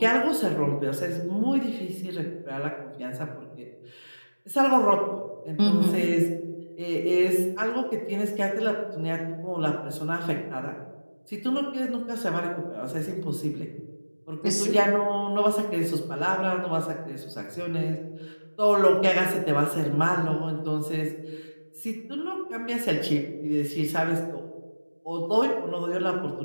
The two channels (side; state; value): both; inverted; correlation -1.00